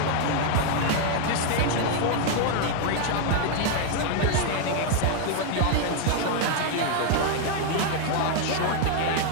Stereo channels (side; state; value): both; different; correlation 0.00